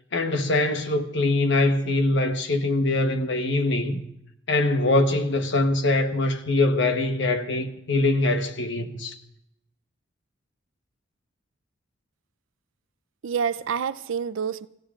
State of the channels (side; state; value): both; normal; correlation 0.42